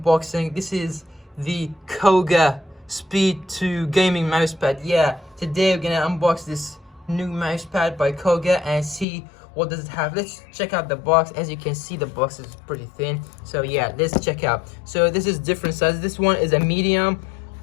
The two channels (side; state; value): right; drops out; at 9.1 s